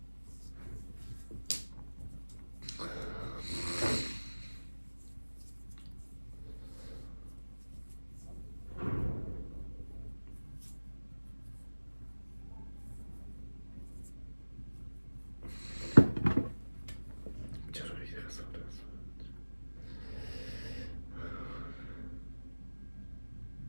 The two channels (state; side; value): inverted; both; correlation -1.00